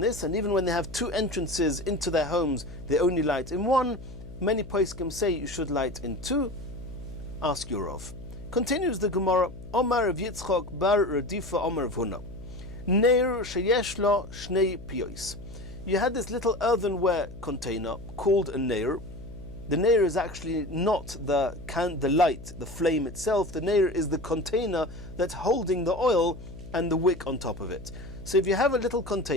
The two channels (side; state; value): left; noise; hum, 15 dB below the sound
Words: and even when they have two entrances into their homes, they only light in one. Many poskim say you should light in two. Ask your Rav. Continues the Gemara, Omar of Yitzchak bar Radifa Omar of Huna. Neir sheyesh lo shnei piyos. You had this little earthenware container called a neir. The neir is actually not the light, the flame itself. The neir is the container that's holding the oil and the wick on top of it. So if you have a little